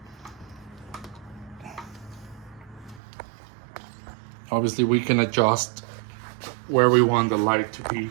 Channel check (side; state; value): left; drops out; at 3.0 s